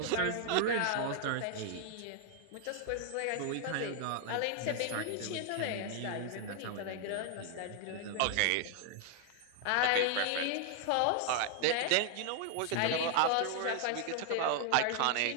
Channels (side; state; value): both; different; correlation 0.00